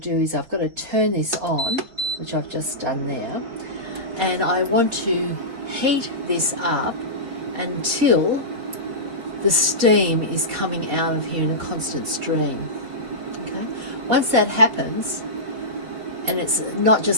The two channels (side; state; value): left; late; 4.7 ms